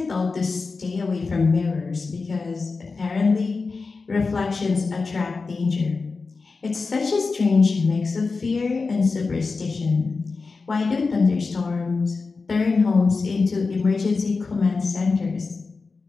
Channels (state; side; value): quieter; right; 4.2 dB